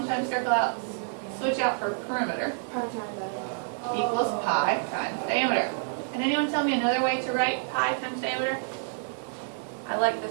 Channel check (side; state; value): left; silent; digital silence